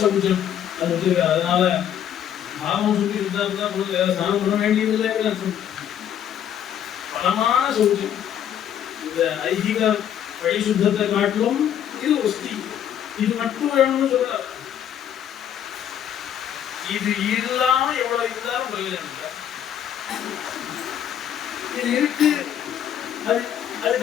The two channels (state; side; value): quieter; right; 9.8 dB